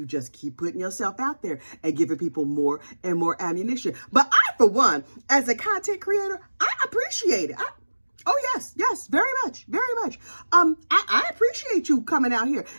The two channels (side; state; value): both; inverted; correlation -1.00